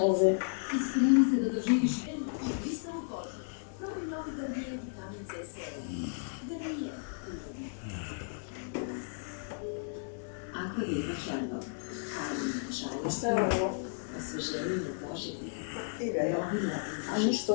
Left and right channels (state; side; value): silent; right; digital silence